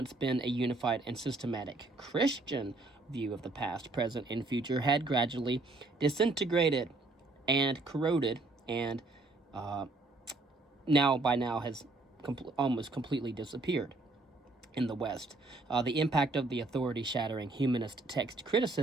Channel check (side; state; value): left; quieter; 3.2 dB